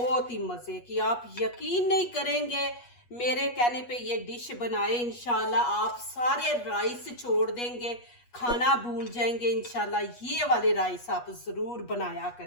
ही मज़े की, आप यकीन नहीं करेंगे मेरे कहने पे ये डिश बनाए इंशाल्लाह। आप सारे राइस छोड़ देंगे, खाना भूल जाएंगे इंशाल्लाह। ये वाले राइस आप ज़रूर बनाया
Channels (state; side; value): late; right; 8.3 ms